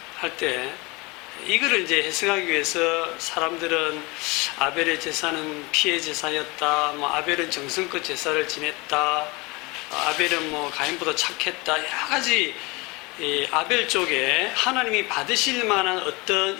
할 때 이거를 이제 해석하기 위해서 사람들은 아벨의 제사는 피의 제사였다, 뭐 아벨은 정성껏 제사를 지냈다, 아벨은 뭐 가인보다 착했다, 여러 가지 아벨 쪽에 하나님이 받으실 만한 어떤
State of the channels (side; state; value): right; quieter; 25.4 dB